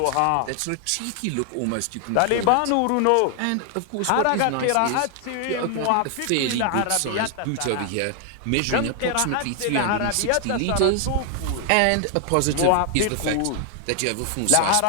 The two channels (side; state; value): both; different; correlation 0.00